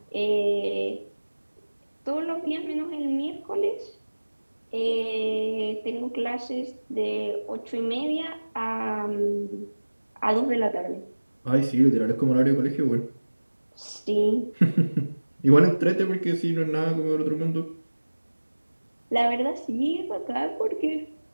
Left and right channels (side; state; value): both; inverted; correlation -1.00